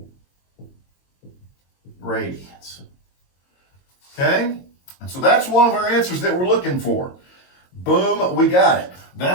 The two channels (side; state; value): right; late; 22 ms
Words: radians. Okay? And so that's one of our answers that we're looking for. Boom, we got it.